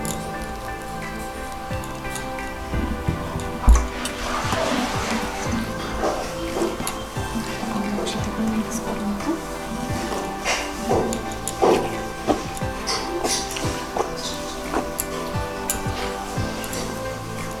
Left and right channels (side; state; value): both; identical; correlation 1.00